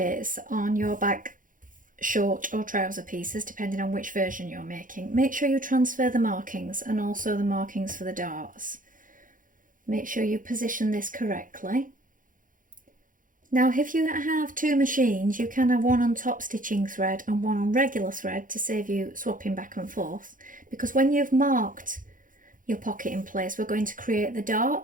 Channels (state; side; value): late; left; 0.39 ms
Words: on your back short or trouser pieces depending on which version you're making. Make sure you transfer the markings and also the markings for the darts. Make sure you position this correctly. Now if you have two machines, you can have one on top stitching thread and one on regular thread to save you swapping back and forth, because when you've marked your pocket in place, we're going to create the